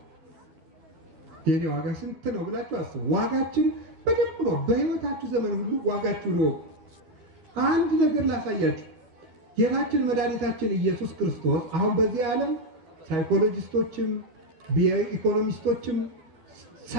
የኔ ዋጋ ስንት ነው ብላችሁ አስቡ። ዋጋችን በደንብ ነው። በህይወታችሁ ዘመን ሁሉ ዋጋችሁ ነው። አንድ ነገር ላሳያችሁ። ጌታችን መድኃኒታችን ኢየሱስ ክርስቶስ አሁን በዚህ ዓለም ሳይኮሎጂስቶችም ኢኮኖሚስቶችም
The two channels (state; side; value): late; left; 13 ms